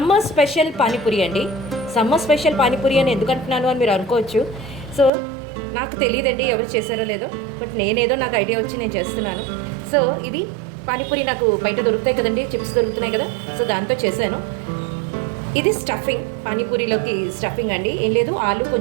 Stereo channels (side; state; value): left; drops out; at 5.1 s